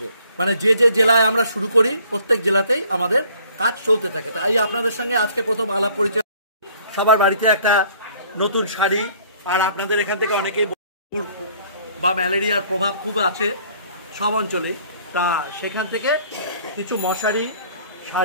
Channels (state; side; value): inverted; both; correlation -0.57